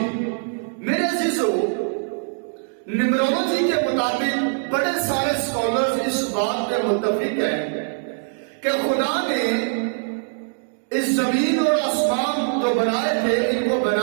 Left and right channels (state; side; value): silent; left; digital silence